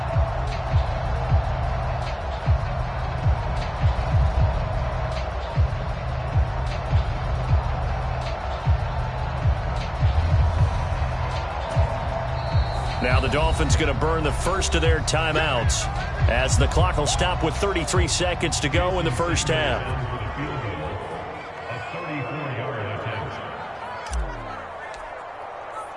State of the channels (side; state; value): both; identical; correlation 1.00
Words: Now the Dolphins going to burn the first of their timeouts as the clock will stop with 33 seconds to go in the 1st half.